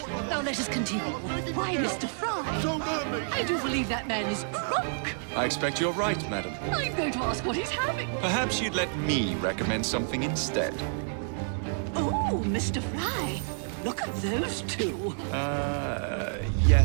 Now let us continue. Why, Mr. Frye? I do believe that man is drunk. I expect you're right, madam. I'm going to ask what he's having. Perhaps you'd let me recommend something instead. Oh, Mr. Frye, look at those two.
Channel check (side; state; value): left; silent; 59 dB below the other